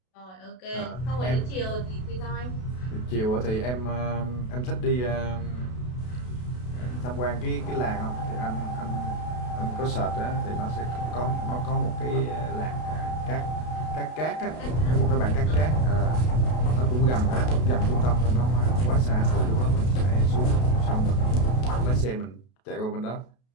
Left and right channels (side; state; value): right; late; 32 ms